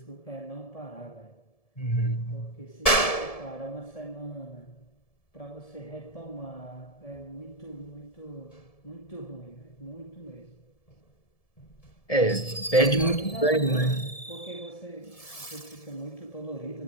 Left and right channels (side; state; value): right; late; 1.7 ms